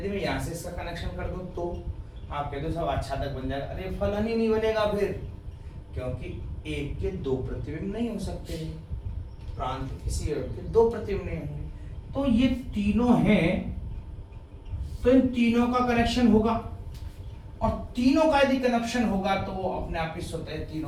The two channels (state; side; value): identical; both; correlation 1.00